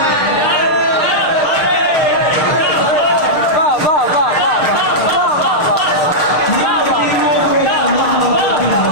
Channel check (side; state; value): right; late; 6.5 ms